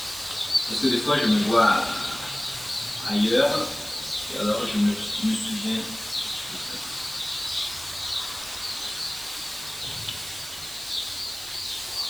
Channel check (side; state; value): right; noise; hiss, 12 dB below the sound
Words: parce que des fois je me vois ailleurs, et alors je me souviens.